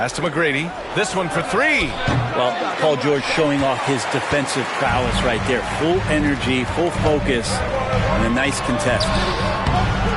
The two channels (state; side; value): identical; both; correlation 1.00